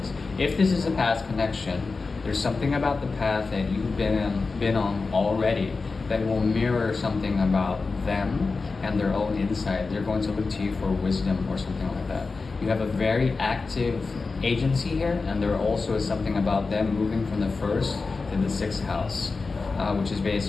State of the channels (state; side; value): quieter; right; 4.2 dB